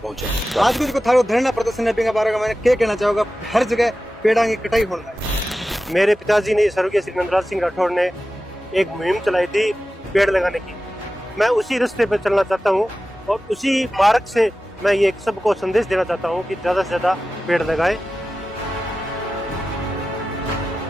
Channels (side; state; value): both; normal; correlation 0.94